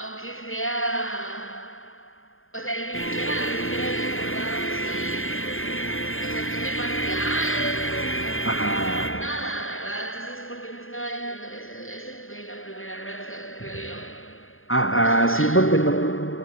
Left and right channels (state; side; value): late; right; 0.59 ms